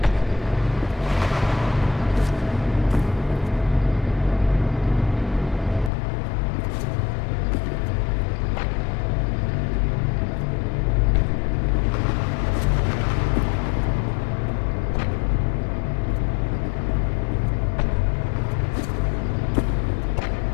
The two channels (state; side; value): drops out; right; at 5.9 s